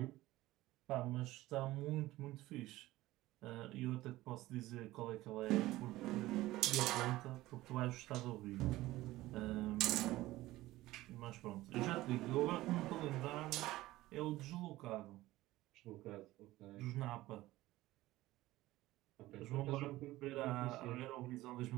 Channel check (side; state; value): left; quieter; 17.2 dB